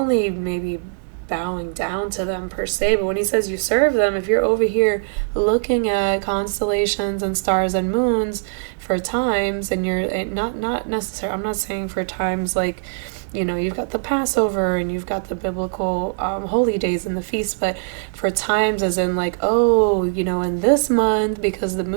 maybe bowing down to them per se, but when he says you serve them, if you're over here looking at constellations and stars and moons for times, and you're not necessarily, I'm not saying for times like you've got the Passover and you've got the biblical holy days and the feasts, but for times as in like, oh, in this month, because the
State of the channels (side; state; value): left; silent; digital silence